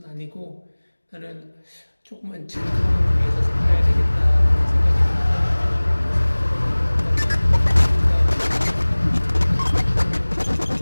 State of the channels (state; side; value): inverted; both; correlation -1.00